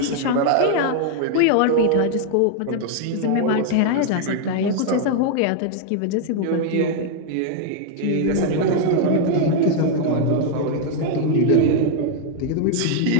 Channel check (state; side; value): different; both; correlation 0.00